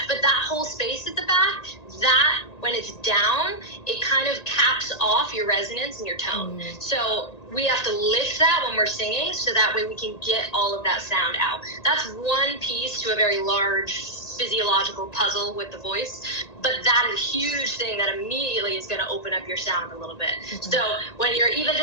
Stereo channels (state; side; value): late; right; 1.9 ms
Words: but that whole space at the back, that, when it's down, it kind of caps off your resonance and your tone. So we have to lift that when we're singing, so that way we can get all of that sound out. That's one piece to a very large physiological puzzle with the voice, but that is a huge thing that immediately is going to open up your sound a little bit. So when you're even